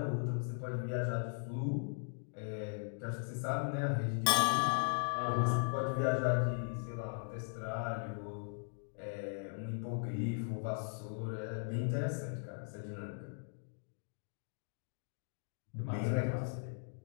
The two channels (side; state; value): right; silent; digital silence